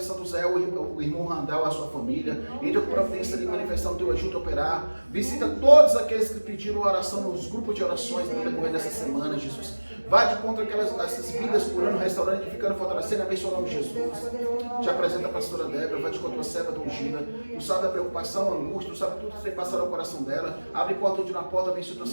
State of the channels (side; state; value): both; inverted; correlation -1.00